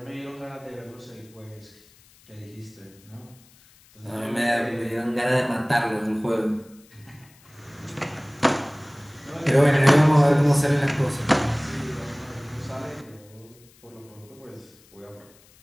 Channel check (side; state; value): left; noise; hiss, 28 dB below the sound